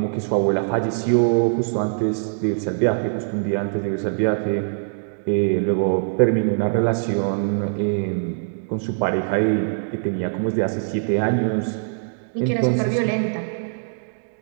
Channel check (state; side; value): silent; left; digital silence